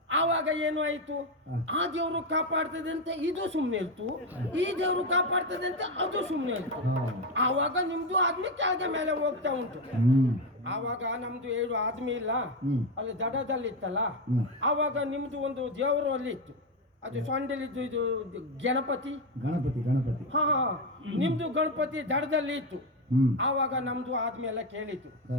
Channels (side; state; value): both; normal; correlation 0.11